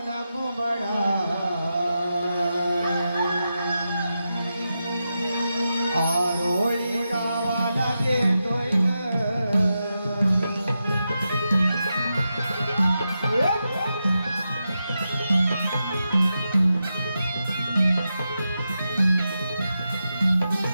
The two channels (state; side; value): inverted; both; correlation -0.89